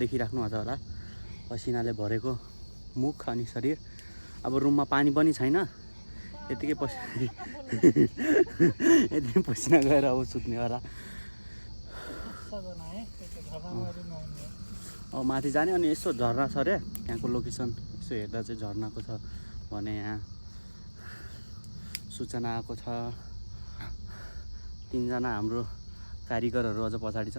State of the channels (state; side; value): inverted; both; correlation -1.00